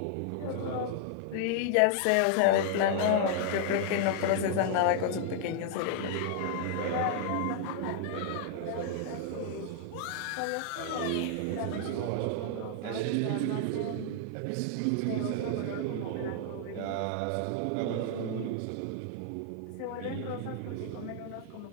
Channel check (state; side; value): different; both; correlation -0.01